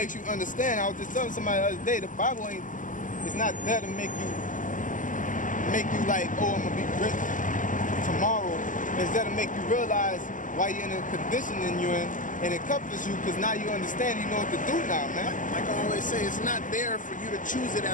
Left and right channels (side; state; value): right; late; 0.38 ms